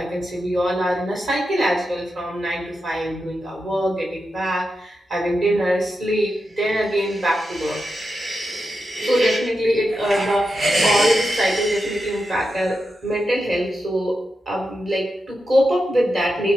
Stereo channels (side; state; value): both; normal; correlation 0.88